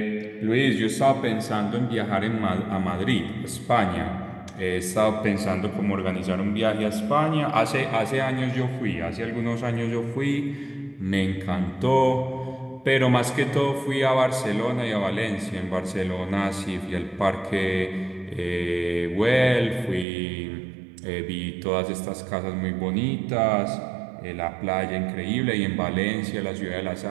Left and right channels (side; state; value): left; drops out; at 20.1 s